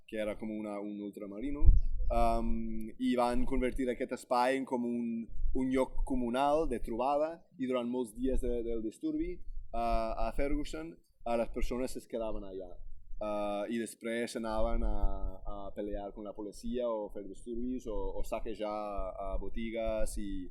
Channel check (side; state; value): both; identical; correlation 1.00